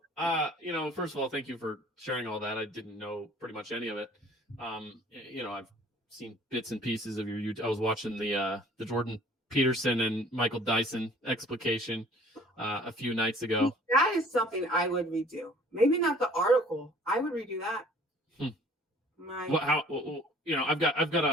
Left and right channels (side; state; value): both; normal; correlation 0.53